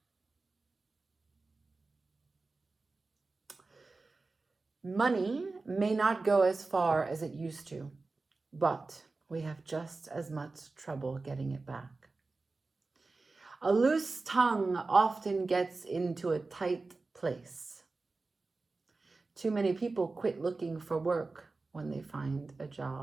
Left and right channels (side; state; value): left; quieter; 3.7 dB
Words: Money may not go as far as it used to, but we have just as much trouble getting it back. A loose tongue often gets into a tight place. Too many people quit looking for work when they find a